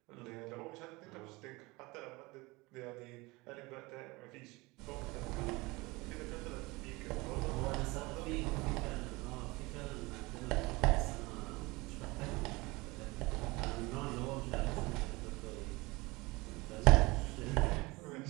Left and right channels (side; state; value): left; quieter; 23.2 dB